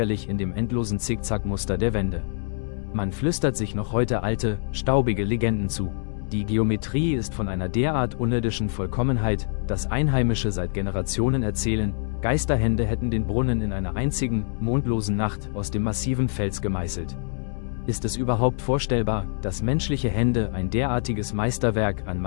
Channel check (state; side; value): silent; right; 62 dB below the other